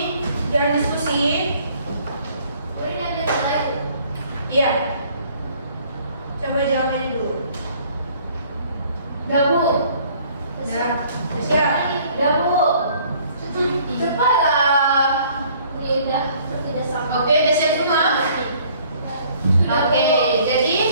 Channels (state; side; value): inverted; both; correlation -0.58